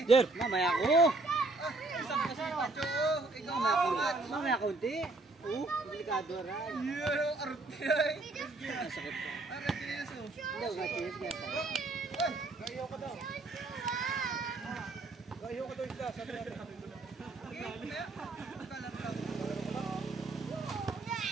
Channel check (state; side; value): quieter; left; 3.2 dB